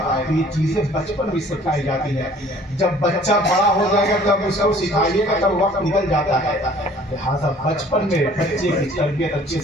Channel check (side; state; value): both; normal; correlation 0.53